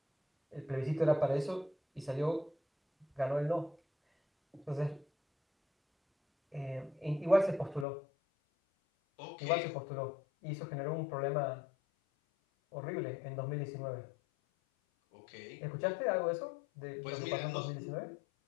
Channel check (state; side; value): drops out; right; at 7.9 s